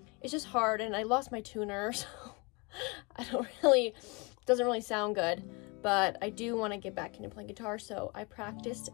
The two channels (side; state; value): right; quieter; 29.0 dB